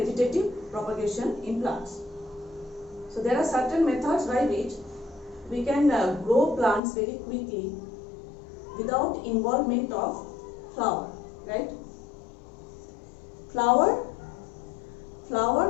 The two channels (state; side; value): drops out; right; at 6.8 s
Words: propagation in plants. So there are certain methods by which we can grow plants very quickly without involvement of flower, right? Flower